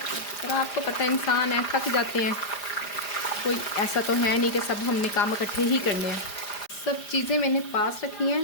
आपको पता है इंसान है, थक जाते हैं। कोई ऐसा तो है नहीं कि सब हमने काम इकट्ठे ही करने हैं। सब चीज़ें मैंने पास रखी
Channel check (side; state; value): right; late; 5.0 ms